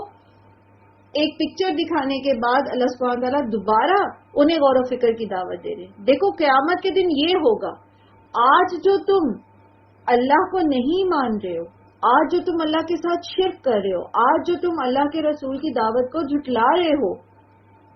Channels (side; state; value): both; identical; correlation 1.00